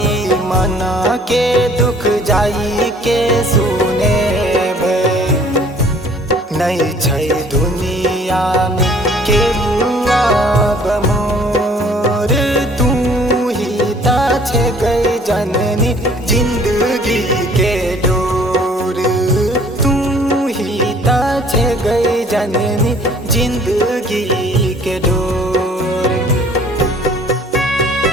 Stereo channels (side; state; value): both; normal; correlation 0.55